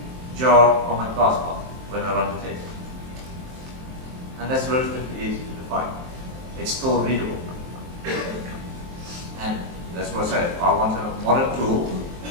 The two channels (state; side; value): late; left; 23 ms